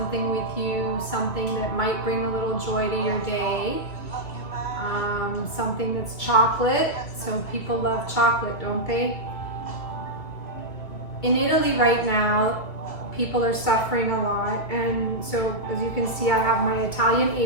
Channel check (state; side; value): late; right; 2.1 ms